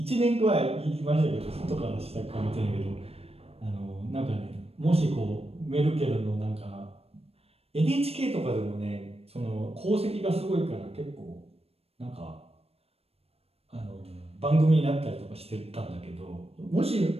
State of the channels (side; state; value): left; late; 0.29 ms